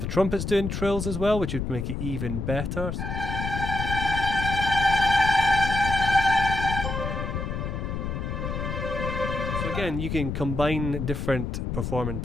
trumpets doing trills as well, which would make it even better. So again, you can combine different performing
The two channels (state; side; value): noise; left; rumble, 3 dB below the sound